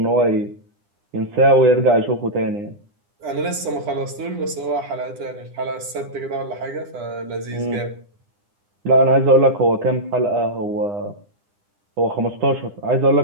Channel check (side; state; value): left; late; 9.9 ms